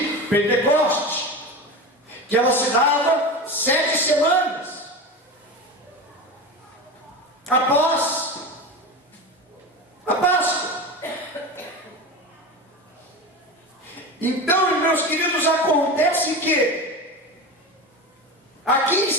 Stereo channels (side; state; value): both; normal; correlation 0.26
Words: Pentecoste, que ela se dava 7 semanas após a Páscoa. Então, meus queridos, acontece que aqui